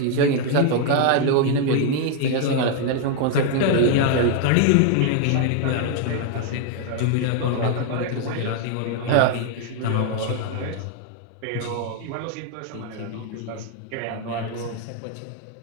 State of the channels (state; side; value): different; both; correlation 0.00